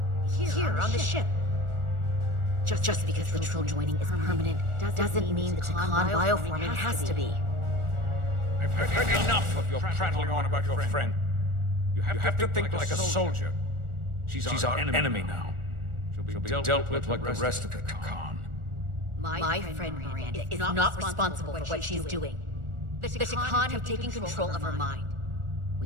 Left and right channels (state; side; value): late; left; 1.4 ms